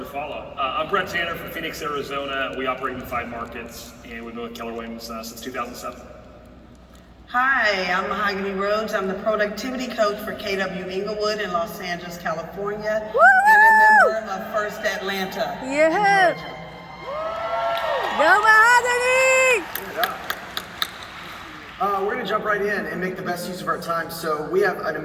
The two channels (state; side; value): identical; both; correlation 1.00